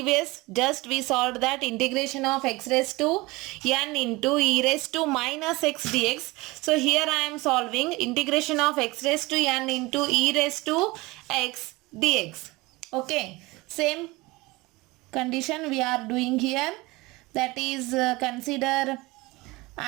just we solved that integration of x raised to n into e raised to minus x dx. So here I am solving integration of x raised to n into e raised to x dx. Okay, same condition we are doing here, that is consider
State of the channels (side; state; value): left; quieter; 22.2 dB